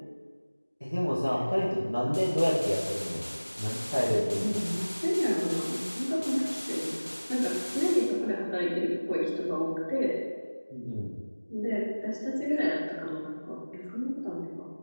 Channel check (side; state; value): both; inverted; correlation -1.00